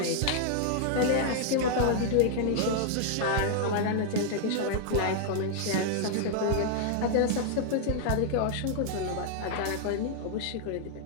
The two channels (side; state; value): both; different; correlation -0.01